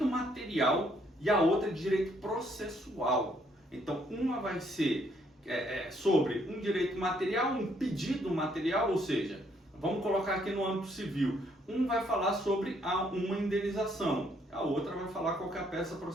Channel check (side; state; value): both; normal; correlation 0.69